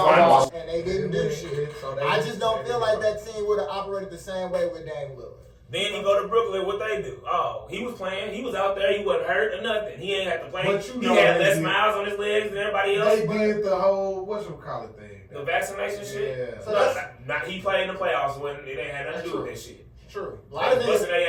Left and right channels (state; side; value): identical; both; correlation 1.00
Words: And they didn't do shit. I just don't feel like that team would have operated the same way with Dame Lillard. Then he go to Brooklyn. What they do? Oh, he was playing. He was out there. He wasn't hurt or nothing. He ain't had to play. He had less miles on his legs than everybody else. They did the whole whatchamacallit thing. The vaccination shit. Yeah. So not he played in the playoffs when it ain't had nothing to do with that shit. True. A lot of niggas busting